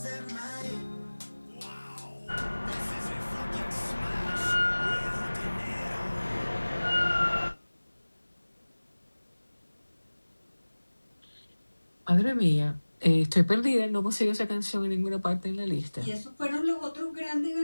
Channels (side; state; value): both; inverted; correlation -1.00